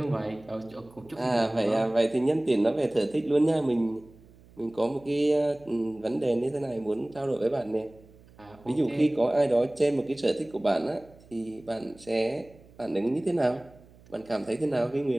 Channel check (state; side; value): noise; right; hum, 25 dB below the sound